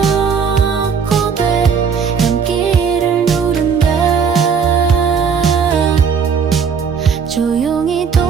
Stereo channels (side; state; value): left; quieter; 6.3 dB